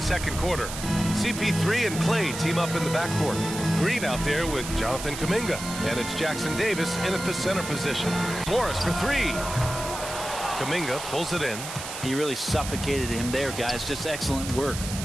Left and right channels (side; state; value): right; noise; hiss, 8 dB below the sound